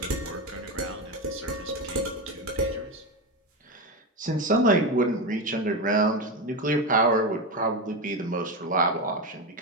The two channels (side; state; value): both; normal; correlation 0.15